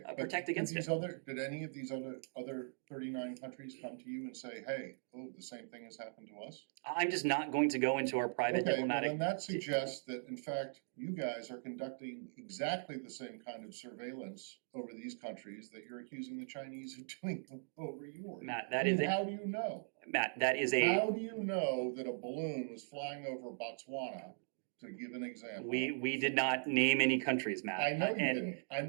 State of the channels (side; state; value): left; silent; digital silence